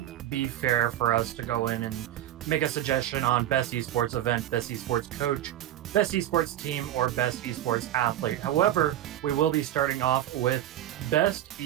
be fair for us to go in and make a suggestion on best esports event, best esports coach, best esports team, or best esports athlete. However, we will be starting off with best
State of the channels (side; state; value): left; quieter; 12.5 dB